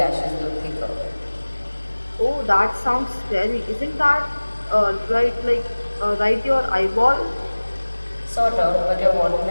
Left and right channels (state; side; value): inverted; both; correlation -1.00